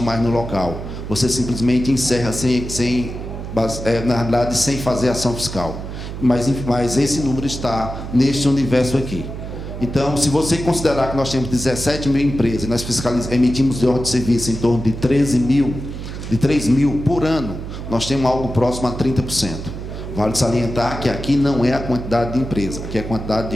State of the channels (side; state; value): right; noise; hum, 8 dB below the sound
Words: mais no local. Você simplesmente encerra na realidade, sem fazer ação fiscal. Mas esse número está neste universo aqui. Então, se você considerar que nós temos 17 mil empresas, nós emitimos de ordem de serviço em torno de 3 mil por ano, nós temos algo próximo a 30%. Vale salientar que aqui não é a quantidade de empresa, aqui é a quantidade